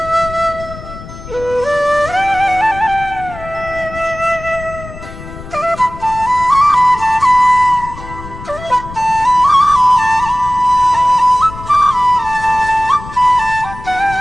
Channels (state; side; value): noise; left; rumble, 14 dB below the sound